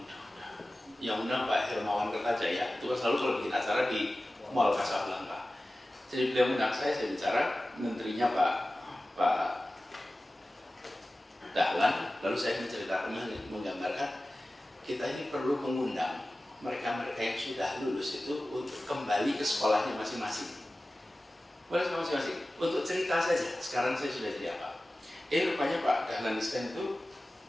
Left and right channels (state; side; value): normal; both; correlation 0.96